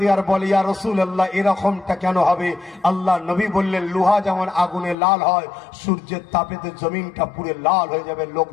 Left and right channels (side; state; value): right; drops out; at 5.0 s